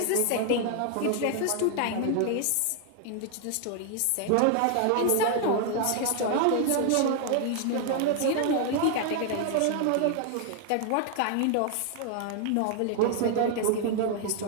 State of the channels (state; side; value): different; both; correlation 0.00